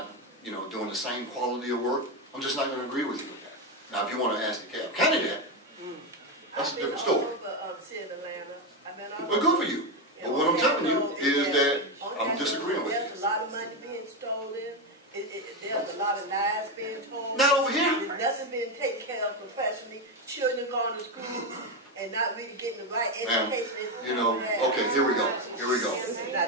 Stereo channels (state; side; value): normal; both; correlation 0.10